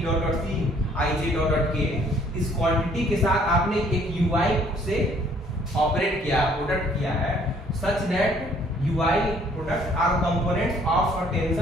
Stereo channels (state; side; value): normal; both; correlation 0.61